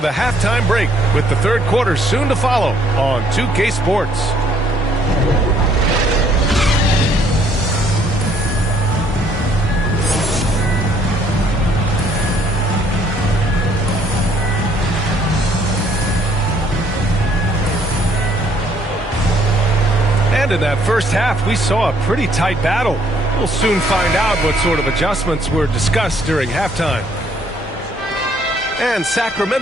halftime break with the third quarter soon to follow on 2K Sports. And in that first half, we saw a pretty tight battle. We'll soon find out what sort of adjustments were discussed during halftime. And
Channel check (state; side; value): normal; both; correlation 0.64